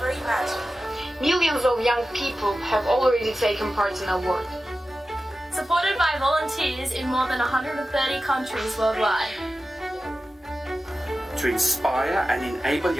imagined. Millions of young people have already taken part in our work. Supported by volunteers in more than 130 countries worldwide. To inspire and enable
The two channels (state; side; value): normal; both; correlation 0.94